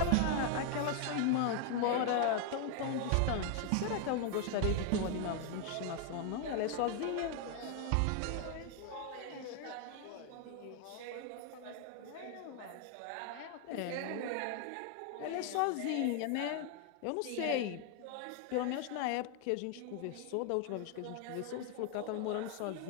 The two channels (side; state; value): both; different; correlation 0.00